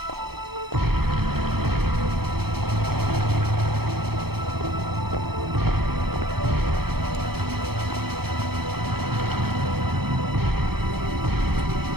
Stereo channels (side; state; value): left; late; 0.96 ms